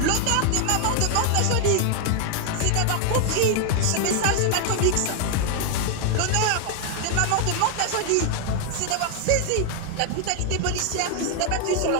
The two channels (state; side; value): different; both; correlation 0.00